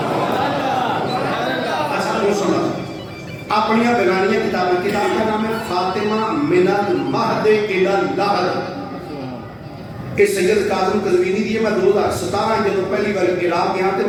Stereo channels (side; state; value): both; identical; correlation 1.00